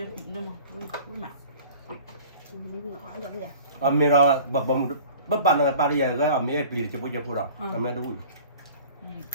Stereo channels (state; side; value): inverted; both; correlation -0.45